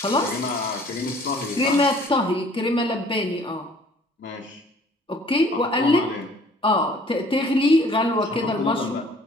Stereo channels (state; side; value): normal; both; correlation 0.55